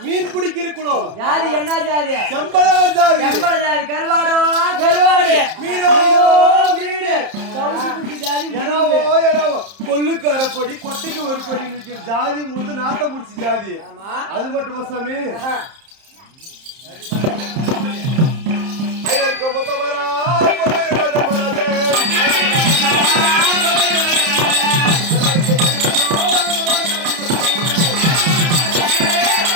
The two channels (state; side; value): late; left; 30 ms